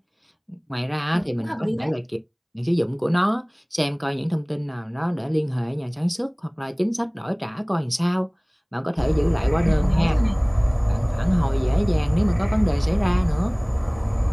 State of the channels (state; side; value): identical; both; correlation 1.00